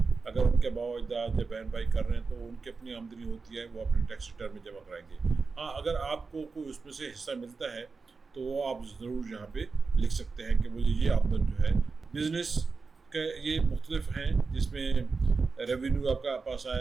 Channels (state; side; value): quieter; left; 4.5 dB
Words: अगर उनके बाबा अजदाद या बहन भाई कर रहे हैं तो उनकी अपनी आमदनी होती है, वो अपने टैक्स रिटर्न में जमा कराएंगे। हाँ, अगर आपको कोई उसमें से हिस्सा मिलता है तो वो आप ज़रूर यहाँ पे लिख सकते हैं कि मुझे ये आमदन जो है बिज़नेस के ये मुख्तलिफ हैं, जिसमें रेवेन्यू आपका पास